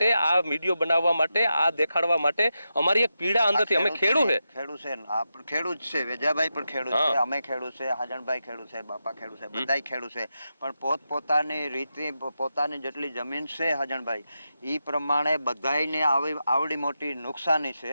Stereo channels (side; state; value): both; inverted; correlation -0.89